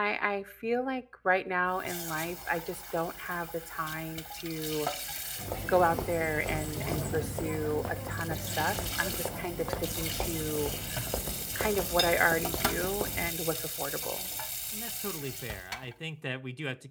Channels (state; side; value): identical; both; correlation 1.00